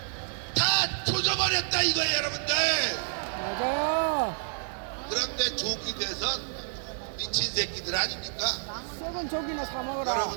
다 조져버렸다 이거예요 여러분들. 맞아요. 그런데 조기 대선 미친 새끼들 아닙니까? 썩은 조기나 사 먹어라.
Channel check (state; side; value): silent; left; digital silence